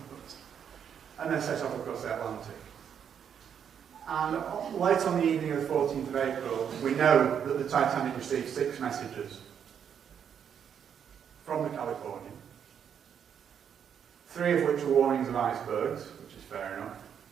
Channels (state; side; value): quieter; left; 8.1 dB